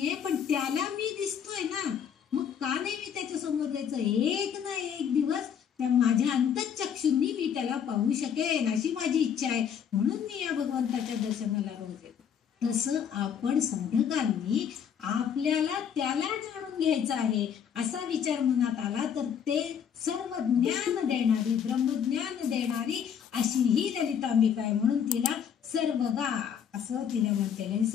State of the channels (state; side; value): quieter; right; 8.1 dB